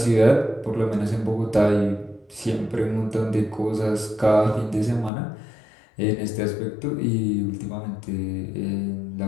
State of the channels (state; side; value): drops out; right; at 5.1 s